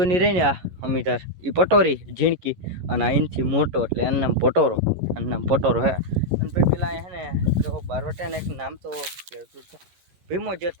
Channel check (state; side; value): late; left; 11 ms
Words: રહી ને આ અમિતાર એ પટોરી ઝીણકી, અને આ એનથી મોટો એટલે એનું નામ પટોરો, આનું નામ પટોરો હે. અને ભાઈ પેલા અહીંયા હે ને જો બારવટિયાને એક નામ તો ભીમો